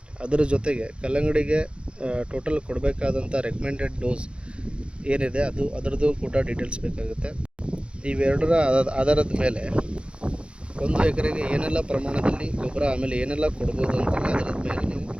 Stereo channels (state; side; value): late; left; 0.057 ms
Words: ಅದರ ಜೊತೆಗೆ ಕಲ್ಲಂಗಡಿಗೆ ಟೋಟಲ್ ಕೊಡಬೇಕಾದಂಥ ರೆಕಮೆಂಡೆಡ್ ಡೋಸ್ ಏನಿದೆ ಅದರದ್ದು ಕೂಡ ಡೀಟೇಲ್ಸ್ ಬೇಕಾಗುತ್ತೆ. ಇವೆರಡರ ಆಧಾರದ ಮೇಲೆ 1 ಎಕರೆಗೆ ಏನೆಲ್ಲ ಪ್ರಮಾಣದಲ್ಲಿ ಗೊಬ್ಬರ ಆಮೇಲೆ ಏನೆಲ್ಲ ಕೊಡ್ಬೋದು ಅಂತೇಳಿ ಅದರ ಮೇಲೆ ನೀವು